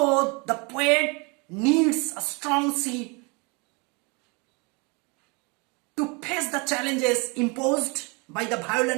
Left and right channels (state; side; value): quieter; left; 30.3 dB